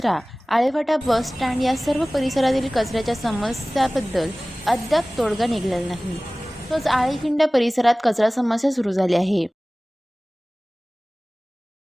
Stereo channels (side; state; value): both; normal; correlation 0.98